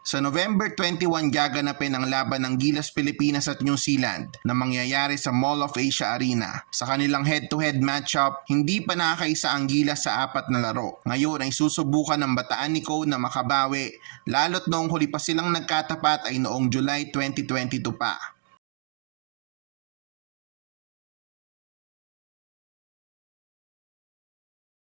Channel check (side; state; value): left; silent; 60 dB below the other